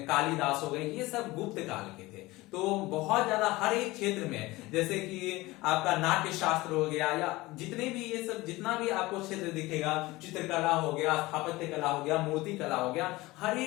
कालिदास हो गए, ये सब गुप्त काल के थे। तो बहुत ज्यादा हर एक क्षेत्र में, जैसे कि आपका नाट्य शास्त्र हो गया या जितने भी ये सब जितना भी आपको क्षेत्र दिखेगा, चित्रकला हो गया, स्थापत्य कला हो गया, मूर्ति कला हो गया, हर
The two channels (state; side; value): quieter; right; 20.2 dB